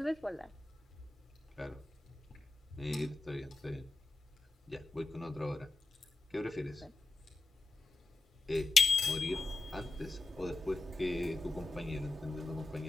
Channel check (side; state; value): right; quieter; 3.4 dB